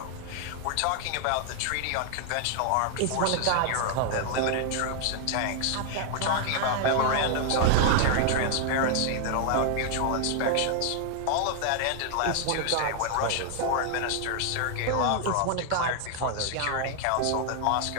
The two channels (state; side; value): different; both; correlation 0.00